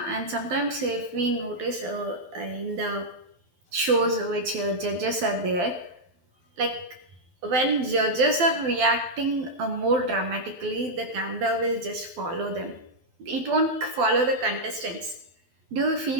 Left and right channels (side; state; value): left; late; 12 ms